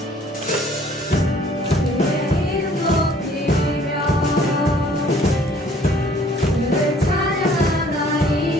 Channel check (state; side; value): normal; both; correlation 0.57